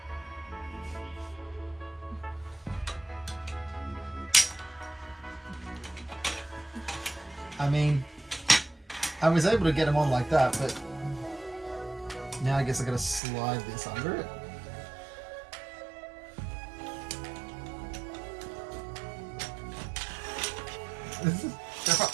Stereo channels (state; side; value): drops out; left; at 13.2 s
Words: I mean, I was able to get them on like that, but now I guess I gotta slide this under it.